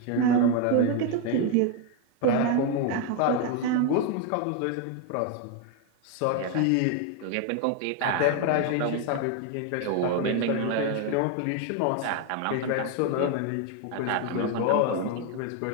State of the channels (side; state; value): both; different; correlation 0.01